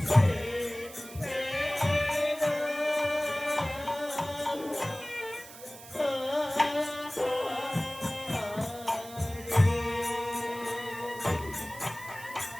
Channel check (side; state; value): right; noise; hiss, 16 dB below the sound